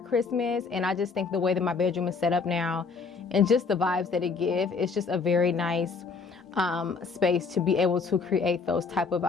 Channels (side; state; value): right; quieter; 4.8 dB